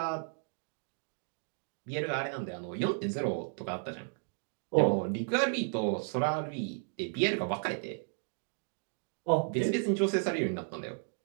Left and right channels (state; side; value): silent; left; 55 dB below the other